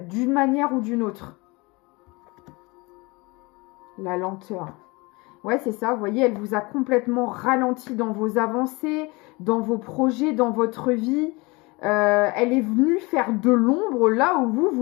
d'une manière ou d'une autre. La lenteur. Ouais, c'est ça, vous voyez, elle vous a complètement ralenti dans vos avancées, dans vos projets, dans votre vie. Elle est venue faire de l'ombre là où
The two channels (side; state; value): right; quieter; 25.4 dB